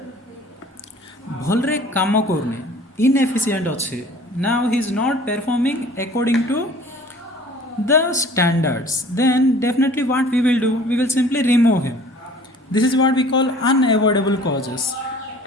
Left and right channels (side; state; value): both; normal; correlation 0.49